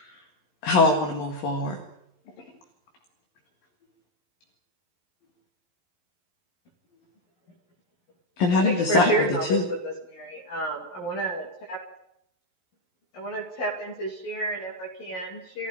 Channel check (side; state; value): right; late; 11 ms